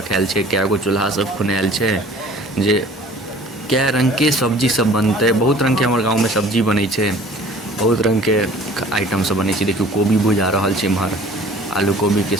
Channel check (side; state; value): both; normal; correlation 0.49